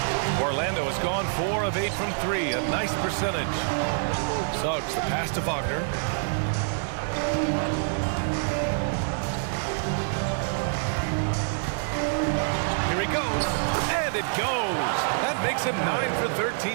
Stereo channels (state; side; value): silent; left; 61 dB below the other